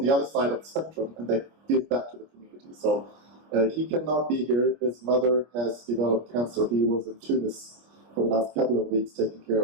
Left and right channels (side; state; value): left; late; 25 ms